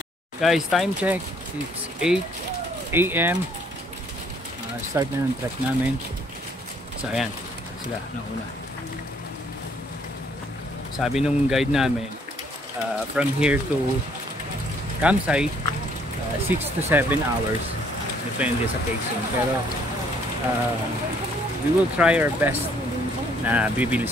Guys, time check. It's 8 AM. Start na ng trek namin. So, ayan. Sila, nauna. Sabi nung guide namin, from here to campsite, 6 to 7 hours. Depende sa pacing. Pero, we will try our best na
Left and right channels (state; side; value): normal; both; correlation 0.64